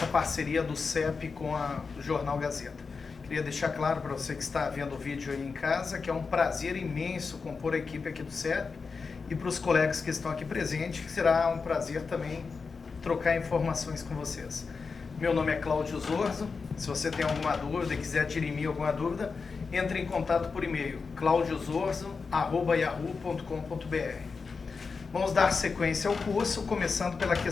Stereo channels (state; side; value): quieter; right; 4.9 dB